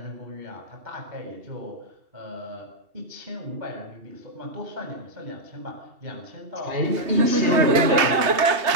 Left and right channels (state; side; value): late; left; 2.7 ms